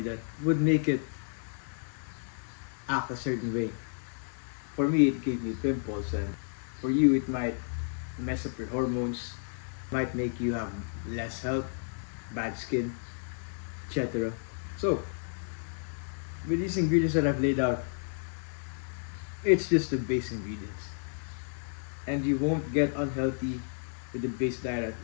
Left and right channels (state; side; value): silent; right; digital silence